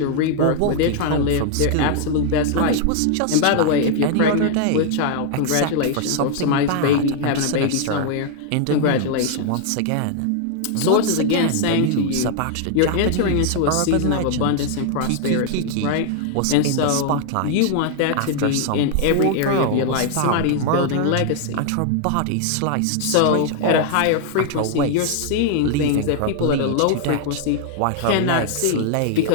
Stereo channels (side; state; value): both; different; correlation 0.00